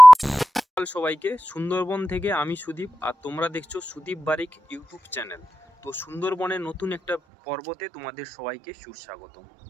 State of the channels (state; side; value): drops out; left; at 7.2 s